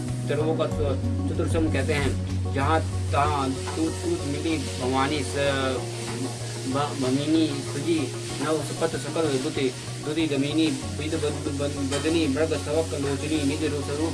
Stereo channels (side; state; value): both; identical; correlation 1.00